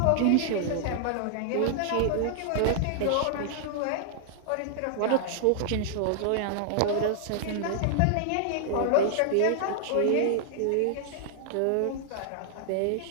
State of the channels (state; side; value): different; both; correlation -0.01